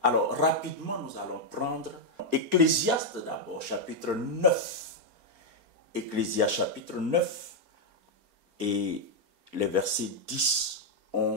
Alors, rapidement, nous allons prendre Ecclésiaste d'abord, chapitre 9. Ecclésiaste, chapitre 9, et les versets 10,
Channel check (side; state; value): left; late; 4.3 ms